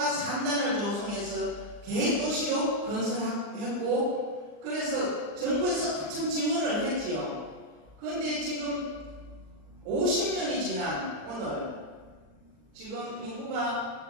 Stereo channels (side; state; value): left; late; 39 ms